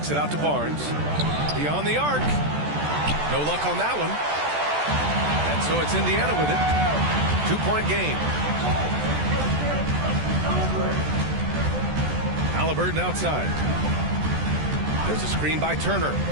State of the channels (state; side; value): late; left; 14 ms